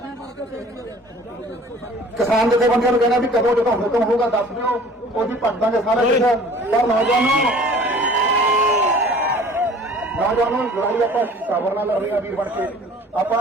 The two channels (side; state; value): both; normal; correlation 0.48